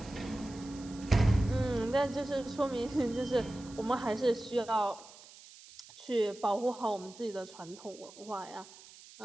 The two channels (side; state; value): right; noise; hiss, 20 dB below the sound